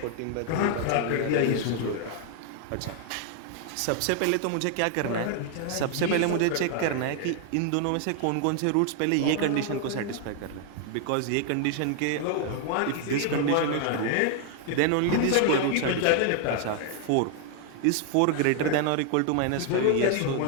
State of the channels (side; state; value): both; different; correlation 0.00